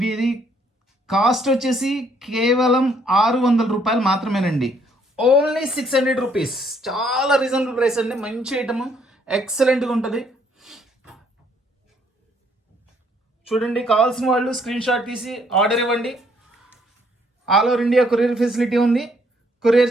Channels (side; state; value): both; normal; correlation 0.67